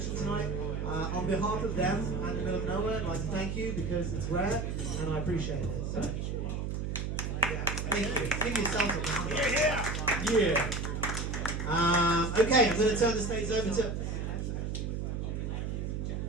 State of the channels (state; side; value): noise; right; hum, 2 dB below the sound